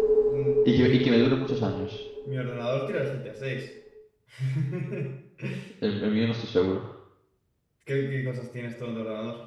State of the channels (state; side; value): identical; both; correlation 1.00